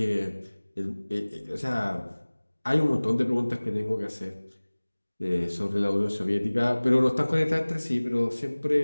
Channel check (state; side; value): inverted; both; correlation -1.00